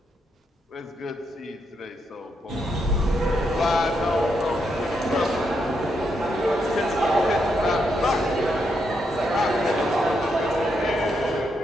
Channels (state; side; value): normal; both; correlation 0.80